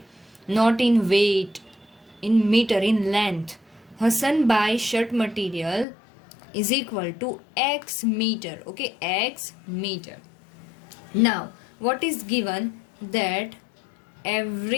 not in weight, in meter, in length. Hassan buys shirt material is equal to X meter, okay, X meter. Now what is given, that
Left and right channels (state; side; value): drops out; right; at 5.9 s